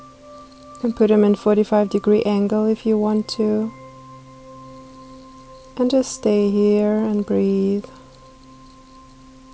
can put them in 45-degree angle if you want to. And just stay here and breathe.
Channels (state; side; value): identical; both; correlation 1.00